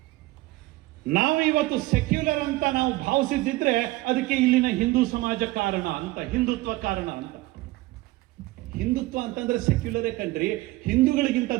ನಾವು ಇವತ್ತು ಸೆಕ್ಯುಲರ್ ಅಂತ ನಾವು ಭಾವಿಸಿದ್ದಿದ್ರೆ ಅದಕ್ಕೆ ಇಲ್ಲಿನ ಹಿಂದೂ ಸಮಾಜ ಕಾರಣ ಅಂತ, ಹಿಂದುತ್ವ ಕಾರಣ ಅಂತ. ಹಿಂದುತ್ವ ಅಂತಂದ್ರೆ ಸೆಕ್ಯುಲರೇ ಕಣ್ರಿ. ಹಿಂದೂಗಳಿಗಿಂತ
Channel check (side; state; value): left; quieter; 19.2 dB